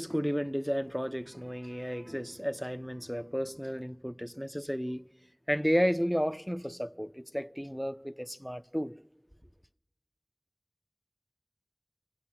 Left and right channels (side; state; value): both; identical; correlation 1.00